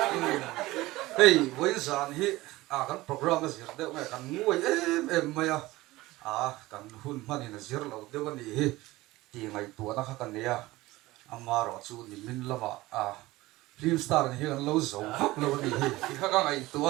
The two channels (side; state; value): left; quieter; 18.9 dB